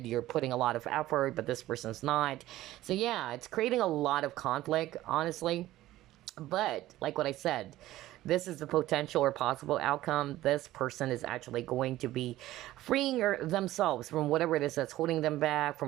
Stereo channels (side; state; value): left; quieter; 15.5 dB